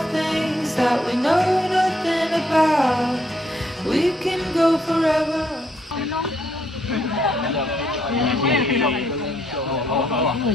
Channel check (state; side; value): normal; both; correlation 0.72